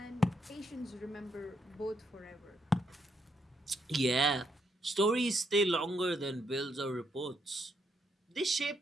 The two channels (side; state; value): both; normal; correlation 0.77